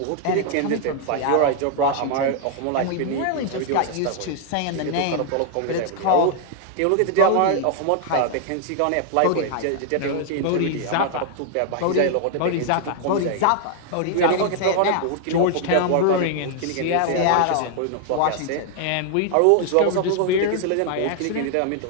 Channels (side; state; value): both; different; correlation 0.00